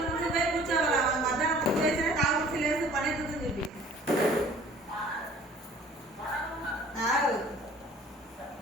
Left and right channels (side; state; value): both; normal; correlation 0.51